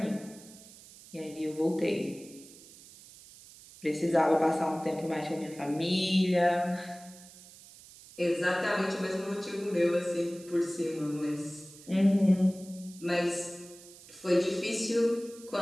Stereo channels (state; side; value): noise; right; hiss, 20 dB below the sound